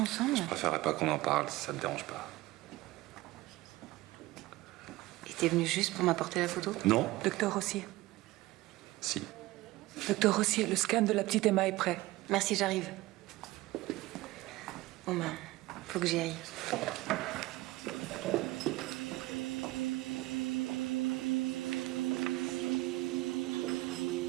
Je préférerais pas qu'on en parle si ça te dérange pas. Et t'es venu juste pour m'apporter la photo? Non. Docteur Rossier. Si. Docteur Rossier, le scan de la petite Emma est prêt. Merci, j'arrive. Bon ben, faut que j'y aille.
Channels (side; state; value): left; quieter; 18.7 dB